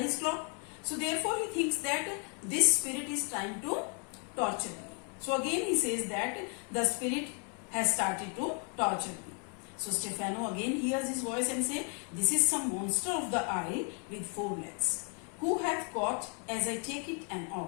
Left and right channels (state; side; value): quieter; right; 38.9 dB